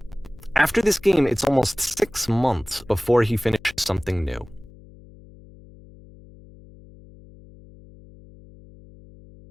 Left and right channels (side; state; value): left; noise; hum, 22 dB below the sound